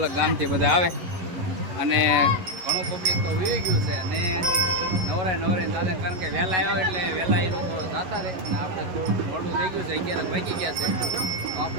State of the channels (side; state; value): left; late; 11 ms